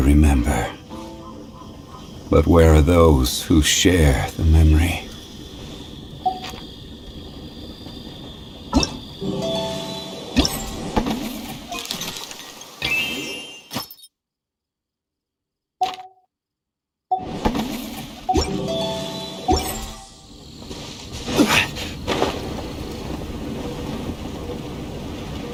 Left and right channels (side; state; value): both; identical; correlation 1.00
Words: But where are those who share the memory?